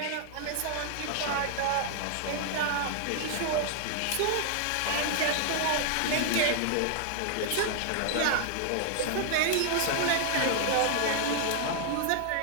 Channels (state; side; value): different; both; correlation 0.00